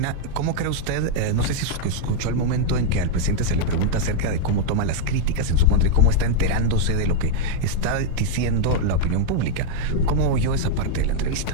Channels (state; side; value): different; both; correlation -0.01